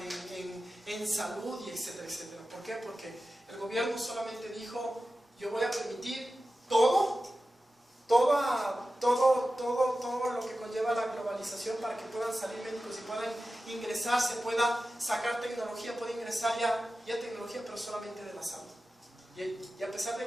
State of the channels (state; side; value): normal; both; correlation 0.94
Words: en salud y etcétera, etcétera. ¿Por qué? Porque el gobierno solamente dijo: yo voy a permitir todo lo que conlleva la globalización para que puedan salir médicos y puedan ingresar, se pueda sacar tecnología, puede ingresar ya tecnología, pero solamente de la salud. Y a pesar